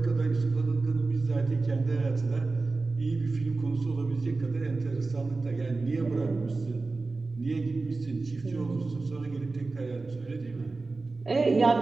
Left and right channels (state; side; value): quieter; left; 3.6 dB